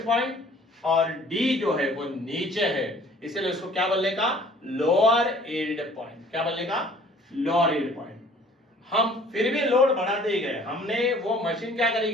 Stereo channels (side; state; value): both; normal; correlation 0.54